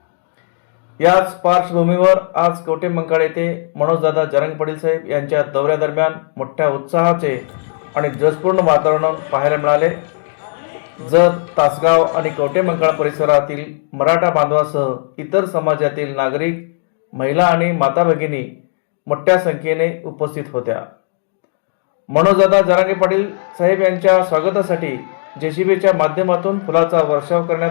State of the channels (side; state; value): right; silent; digital silence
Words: याच पार्श्वभूमीवर आज कवठेमंकाळ येथे मनोजदादा जरांगे पाटील साहेब यांच्या दौऱ्यादरम्यान मोठ्या उत्साहाचे आणि जोशपूर्ण वातावरण पाहायला मिळाले. जत, तासगाव आणि कवठेमंकाळ परिसरातील मराठा बांधवासह इतर समाजातील नागरिक, महिला आणि माता भगिनी मोठ्या संख्येने उपस्थित होत्या. मनोजदादा जरांगे पाटील साहेब यांच्या स्वागतासाठी जेसीबीच्या माध्यमातून फुलाचा वर्षाव